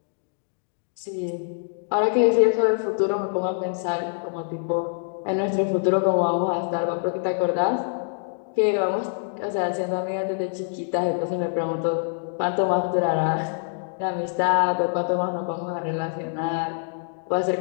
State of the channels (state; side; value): silent; right; digital silence